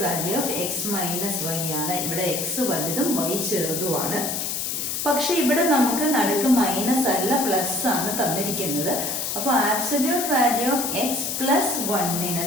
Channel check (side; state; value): left; noise; hiss, 2 dB below the sound